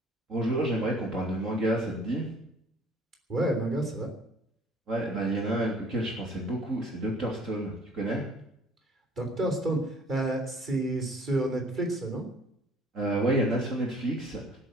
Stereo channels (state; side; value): normal; both; correlation 0.54